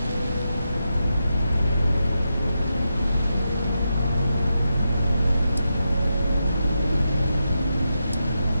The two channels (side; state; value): both; inverted; correlation -0.87